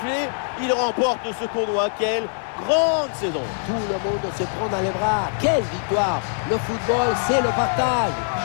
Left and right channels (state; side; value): silent; right; digital silence